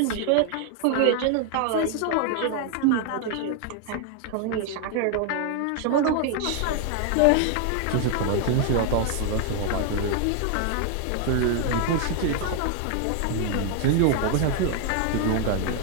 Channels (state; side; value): different; both; correlation 0.00